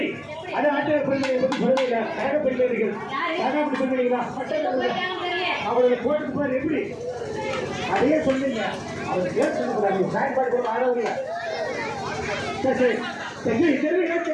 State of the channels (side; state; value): both; identical; correlation 1.00